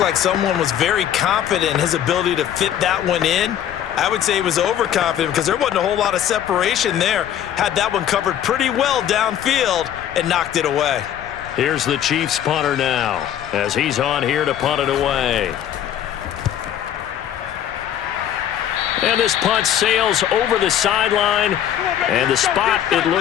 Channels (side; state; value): right; quieter; 10.5 dB